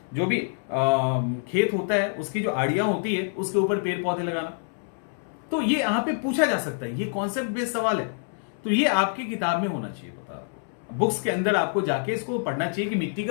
जो भी खेत होता है उसकी जो आड़ियां होती है उसके ऊपर पेड़ पौधे लगाना। तो ये यहां पे पूछा जा सकता है, ये कॉन्सेप्ट बेस्ड सवाल है, तो ये आपकी किताब में होना चाहिए। पता आपको बुक्स के अंदर आपको जाके इसको पढ़ना चाहिए कि मिट्टी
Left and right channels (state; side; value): silent; right; 61 dB below the other